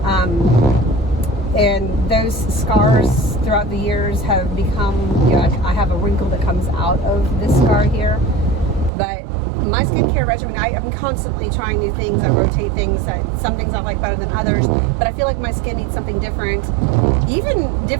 And those scars throughout the years have become, you know, I have a wrinkle that comes out of this scar here. But my skincare regimen, I'm constantly trying new things. I rotate things. Some things I like better than others. But I feel like my skin needs something different, even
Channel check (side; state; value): left; drops out; at 8.9 s